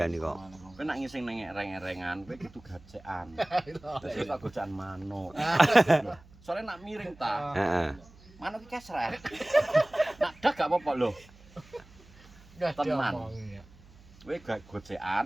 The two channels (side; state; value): right; noise; hum, 24 dB below the sound